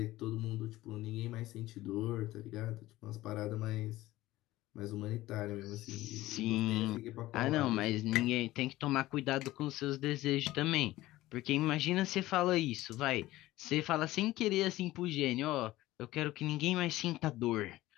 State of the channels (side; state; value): right; quieter; 16.9 dB